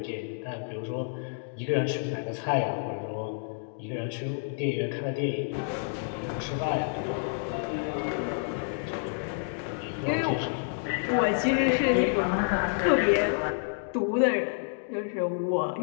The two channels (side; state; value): right; silent; digital silence